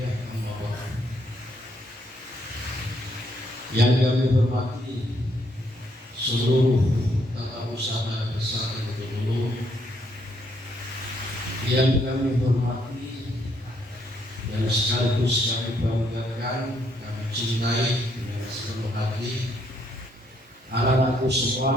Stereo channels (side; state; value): both; normal; correlation 0.72